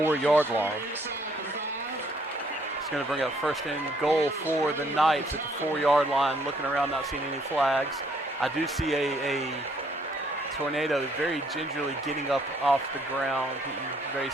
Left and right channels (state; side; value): normal; both; correlation 0.66